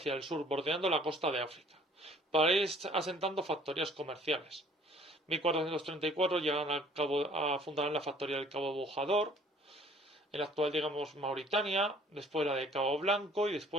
el sur, bordeando la costa de África, para ir asentando factorías comerciales. 1434 llegan fundarán la factoría del Cabo Bojador, en la actual, digamos, Mauritania, después la de Cabo Blanco y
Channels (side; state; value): both; normal; correlation 0.55